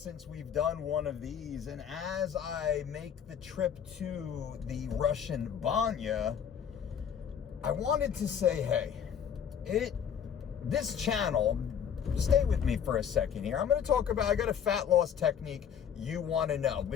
we've done one of these, and as I make the trip to the Russian Banya, I wanted to say, hey, this channel, stay with me for a second here. I'm going to talk about, I got a fat loss technique you want to know.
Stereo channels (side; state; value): right; quieter; 8.1 dB